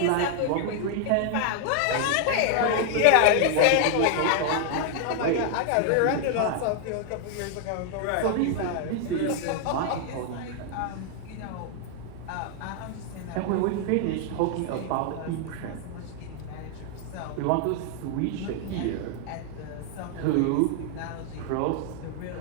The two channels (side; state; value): both; different; correlation 0.00